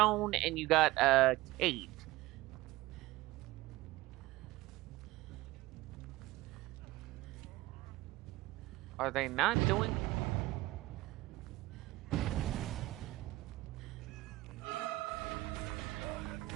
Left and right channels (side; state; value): left; quieter; 18.7 dB